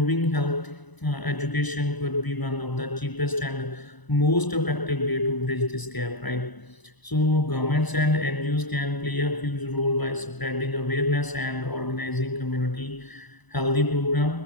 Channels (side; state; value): right; late; 1.0 ms